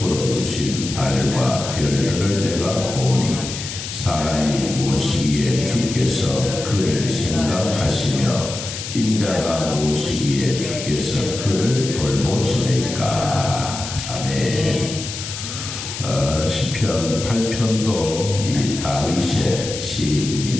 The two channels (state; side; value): noise; left; hiss, 8 dB below the sound